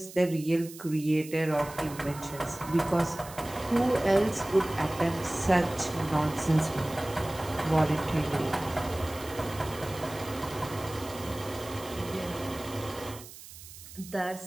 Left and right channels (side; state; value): right; noise; hiss, 16 dB below the sound